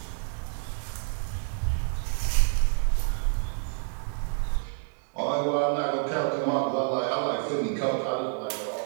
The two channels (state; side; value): silent; left; digital silence